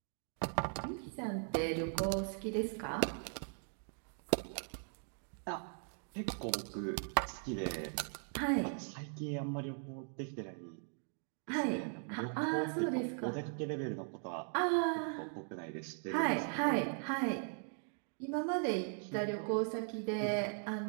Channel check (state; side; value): silent; left; 52 dB below the other